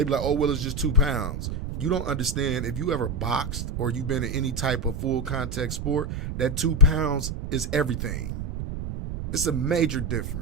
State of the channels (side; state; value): right; noise; rumble, 5 dB below the sound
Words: be like, oh, well, it's just 2 pounds. You don't understand, if you ever boxed or you've been in any type of full contact sport, that 2 pounds is everything. It's a major